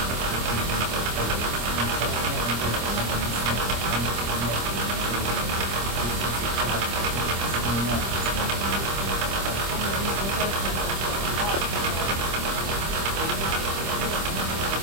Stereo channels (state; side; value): late; left; 25 ms